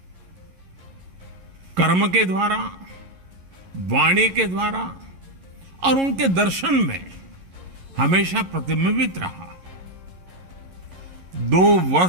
कर्म के द्वारा, वाणी के द्वारा और उनके दर्शन में हमेशा प्रतिबिंबित रहा। 2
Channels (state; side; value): late; left; 11 ms